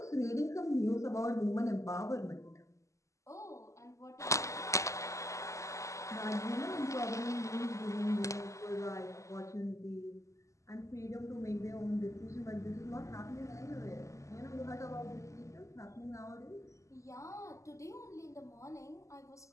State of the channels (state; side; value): late; right; 0.15 ms